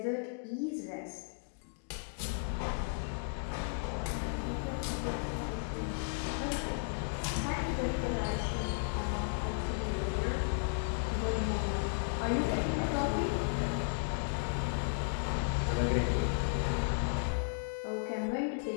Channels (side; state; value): right; silent; digital silence